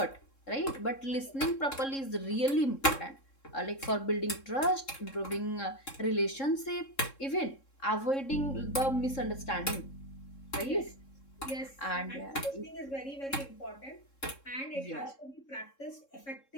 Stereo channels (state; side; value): late; right; 3.7 ms